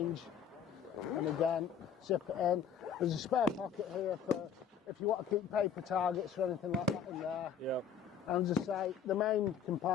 And again, zip it in. There's a spare pocket here for if you want to keep paper targets or anything like that in there. And as I say, the main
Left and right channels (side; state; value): right; quieter; 7.6 dB